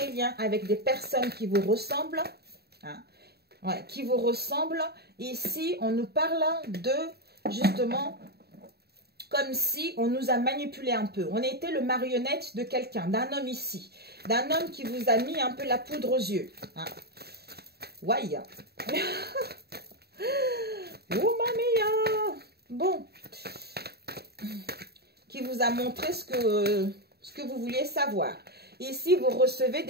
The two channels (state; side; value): late; left; 0.47 ms